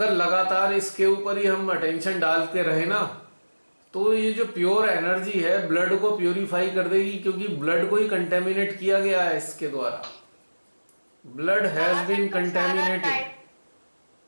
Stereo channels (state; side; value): inverted; both; correlation -1.00